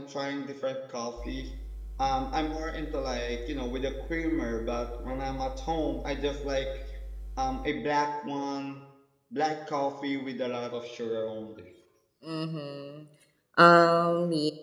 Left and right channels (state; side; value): identical; both; correlation 1.00